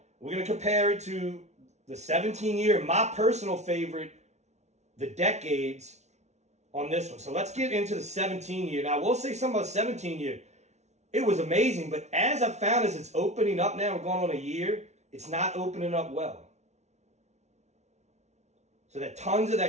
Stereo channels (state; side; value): late; left; 0.32 ms